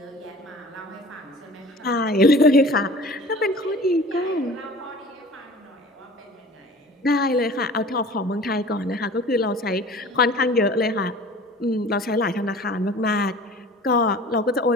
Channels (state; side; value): normal; both; correlation 0.43